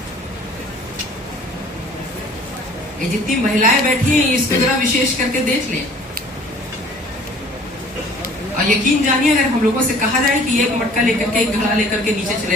ये जितनी महिलाएं बैठी हैं, इसको जरा विशेष करके देख लें और यकीन जानिए, अगर हम लोगों से कहा जाए कि एक मटका लेकर के, एक घड़ा लेकर के नीचे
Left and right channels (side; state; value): both; normal; correlation 0.52